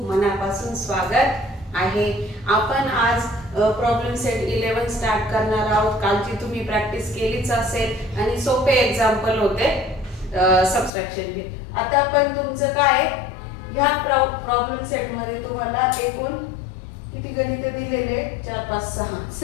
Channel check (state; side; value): drops out; right; at 10.9 s